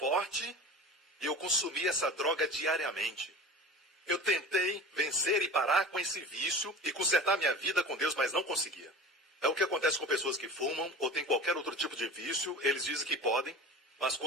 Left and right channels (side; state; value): both; normal; correlation 0.35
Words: e eu consumi essa droga diariamente. Eu tentei vencer e parar com esse vício e consertar minha vida com Deus, mas não conseguia. É o que acontece com pessoas que fumam ou têm qualquer outro tipo de vício. Eles dizem que podem, mas